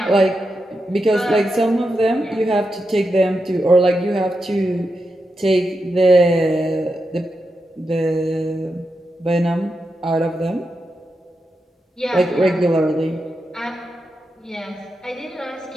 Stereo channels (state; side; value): normal; both; correlation 0.87